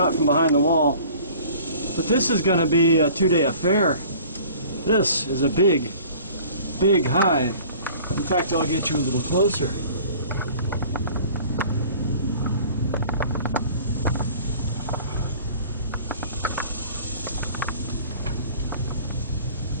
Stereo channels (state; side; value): inverted; both; correlation -0.47